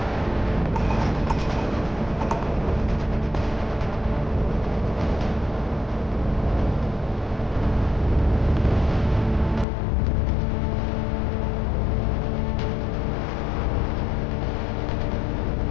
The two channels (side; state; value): right; drops out; at 9.7 s